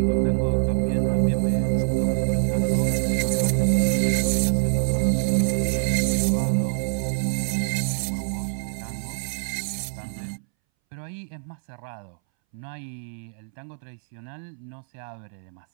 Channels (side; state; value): left; silent; 62 dB below the other